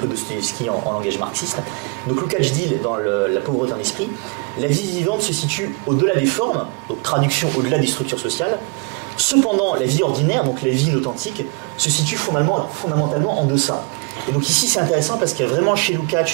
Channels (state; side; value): quieter; left; 30.7 dB